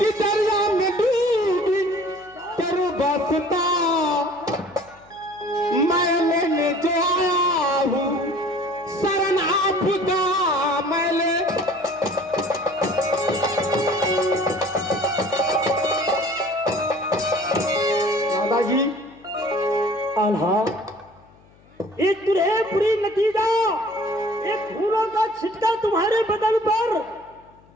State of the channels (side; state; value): left; noise; hum, 29 dB below the sound